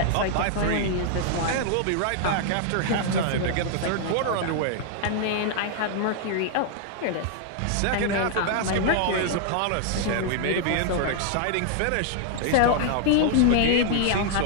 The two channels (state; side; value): different; both; correlation 0.00